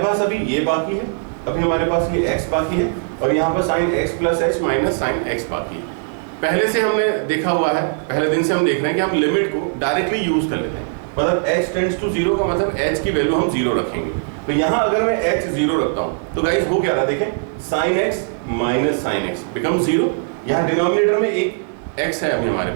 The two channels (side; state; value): left; silent; 66 dB below the other